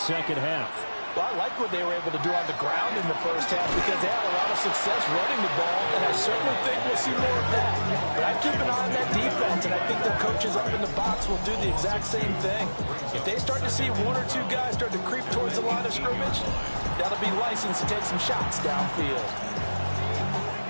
half? Well, I like what they were able to do on the ground in the first half because they had a lot of success running the ball, and I certainly think we'll see more of that. But I'd keep an eye on that defense, and I think their coaches up in the box will do the exact same thing. If they start to see one or two guys start to creep towards the line of scrimmage, that'll be license to take some shots downfield.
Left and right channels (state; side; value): inverted; both; correlation -1.00